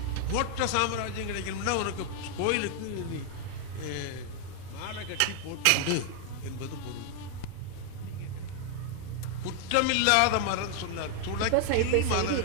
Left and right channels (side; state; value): both; different; correlation 0.00